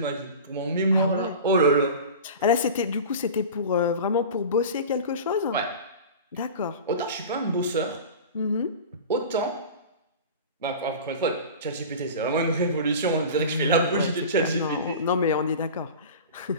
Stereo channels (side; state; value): both; inverted; correlation -0.33